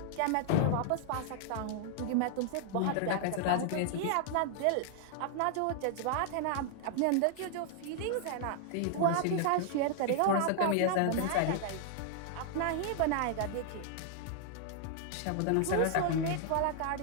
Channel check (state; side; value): different; both; correlation 0.00